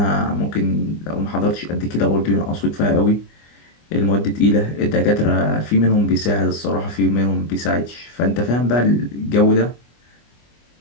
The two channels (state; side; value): late; right; 25 ms